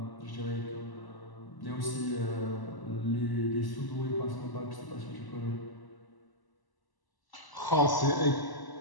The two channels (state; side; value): late; right; 1.0 ms